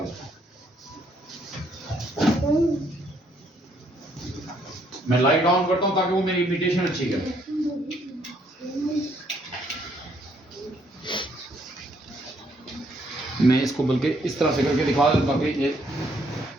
हूं, मैं लाइट ऑन करता हूं ताकि वो मेरी इमिटेशन अच्छी करे। मैं इसको बल्कि इस तरह से करके दिखा दूं ताकि ये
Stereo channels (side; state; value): both; normal; correlation 0.69